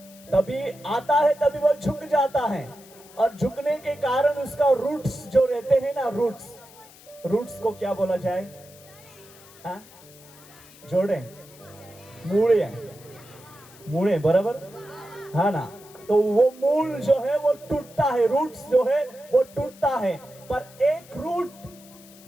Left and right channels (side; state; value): left; noise; hiss, 22 dB below the sound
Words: तभी आता है, तभी वो झुक जाता है, और झुकने के कारण उसका रूट्स जो रहते हैं ना, रूट्स को क्या बोला जाए? हाँ? जोड़े मूड़े बराबर, हाँ ना। तो वो मूल जो है वो टूटता है, रूट्स जो है वो टूटता है, पर एक रूट